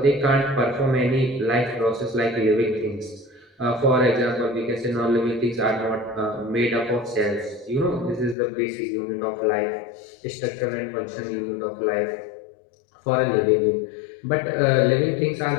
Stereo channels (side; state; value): right; drops out; at 8.3 s